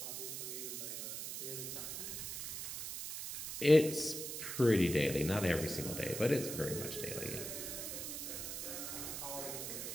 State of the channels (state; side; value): noise; right; hiss, 5 dB below the sound